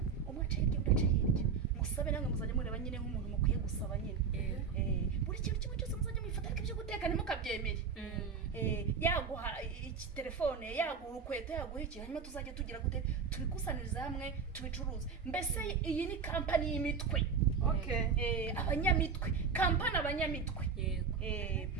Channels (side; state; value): left; quieter; 5.8 dB